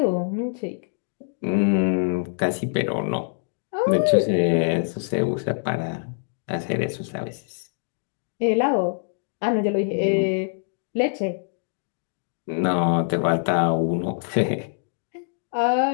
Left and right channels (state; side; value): silent; right; digital silence